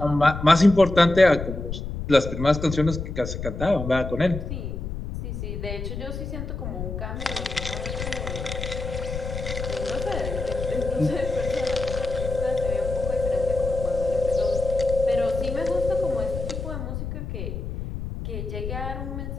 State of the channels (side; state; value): left; noise; rumble, 6 dB below the sound